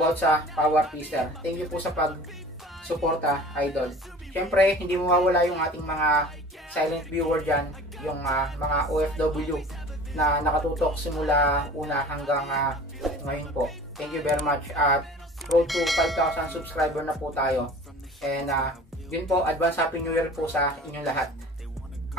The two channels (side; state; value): both; normal; correlation 0.42